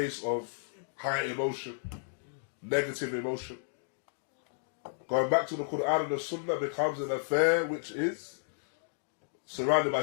of high emotion, negative emotion. Going back to the Quran and the Sunnah becomes an affair which is surrounded by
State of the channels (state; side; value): silent; right; digital silence